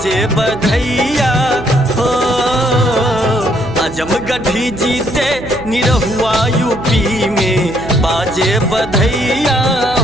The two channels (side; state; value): right; noise; hum, 13 dB below the sound